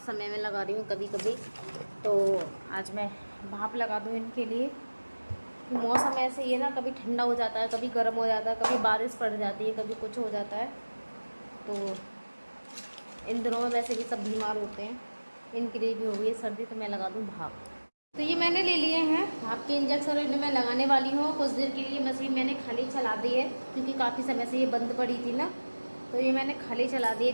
समय में लगा रही हूँ कभी कभी, तो आज मैं भाप लगा दूँ इनके लिए। मौसम ऐसे ही है ना, कभी ठंडा हो जाता है, कभी गर्म हो जाता है, कभी बारिश पड़ जाती है, कभी कुछ हो जाता है। तो इन दिनों में वैसे भी सब बीमार होते हैं, इनके लिए भी हो गई है सर्दी, तो मैं लगा दूँ भाप। तो ये मैंने ले लिए हैं भाप के इंजेक्शन, इन्हें मैं लगाने वाली हूँ। कुछ देर के लिए मशीन मैंने खाली चला दी है क्योंकि काफ़ी समय से ये बंद पड़ी थी ना, तो ये मैंने खाली चला दी है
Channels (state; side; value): inverted; both; correlation -1.00